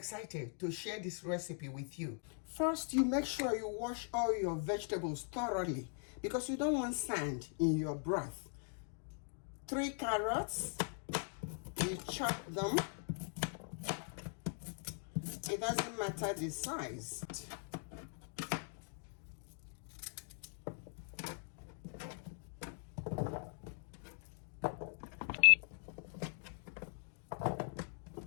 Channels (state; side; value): silent; right; 50 dB below the other